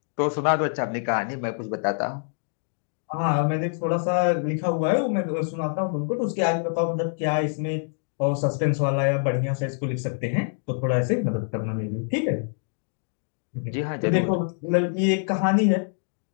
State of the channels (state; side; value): silent; right; digital silence